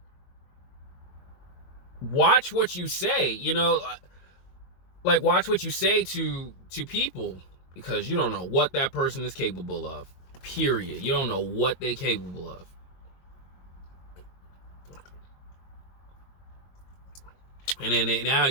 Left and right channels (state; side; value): late; right; 22 ms